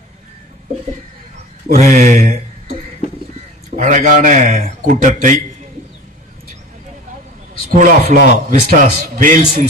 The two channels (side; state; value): both; normal; correlation 0.36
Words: ஒரு அழகான கூட்டத்தை school of law, VISTAS, Vels